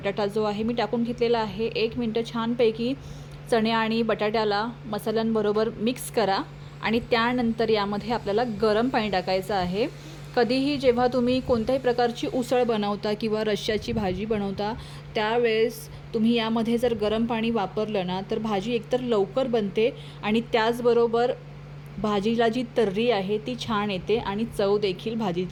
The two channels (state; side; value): identical; both; correlation 1.00